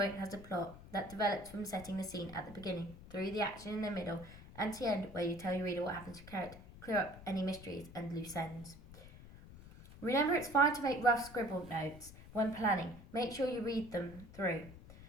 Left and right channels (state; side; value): noise; left; rumble, 17 dB below the sound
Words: has a plot that develops from setting the scene at the beginning, through the action in the middle, and to the end where you tell your reader what happens to your character, clear up any mysteries and loose ends. Remember, it's fine to make rough scribbled notes when planning. Make sure you read them through,